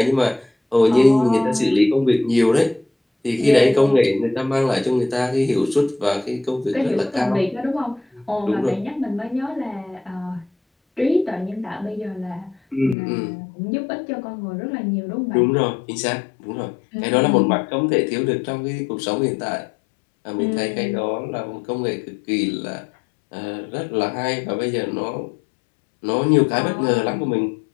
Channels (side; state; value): right; drops out; at 13.0 s